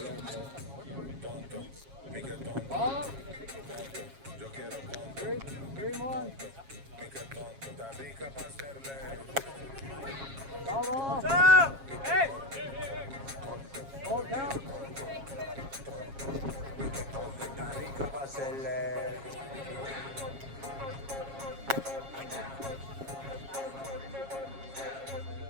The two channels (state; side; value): late; left; 7.4 ms